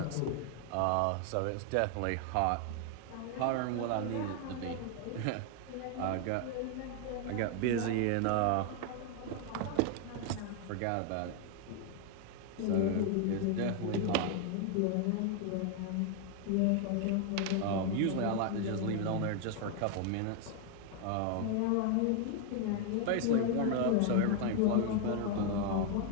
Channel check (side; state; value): both; different; correlation 0.01